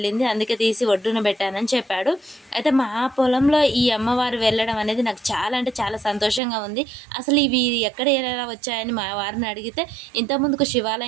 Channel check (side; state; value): left; drops out; at 6.4 s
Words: అందుకే తీసి ఒడ్డున పెట్టానని చెప్పాడు. అయితే మా పొలంలో ఈ అమ్మవారు వెళ్ళడం అనేది నాకు చాలా అంటే చాలా సంతోషంగా ఉంది. అసలు ఇవి ఎక్కడ ఎలా వచ్చాయని మా వారిని అడిగితే ఇంతకుముందుకు